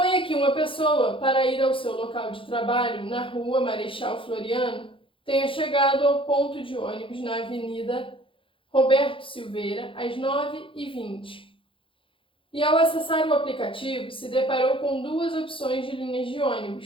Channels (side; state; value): right; late; 0.25 ms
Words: que uma pessoa, para ir ao seu local de trabalho, na rua Marechal Floriano, tenha chegado ao ponto de ônibus na Avenida Roberto Silveira às 9h20. E ao acessar o aplicativo, se deparou com duas opções de linhas de